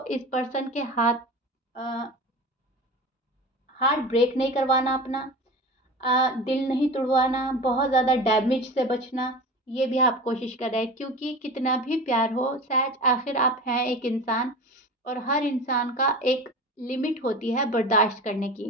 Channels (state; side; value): normal; both; correlation 0.32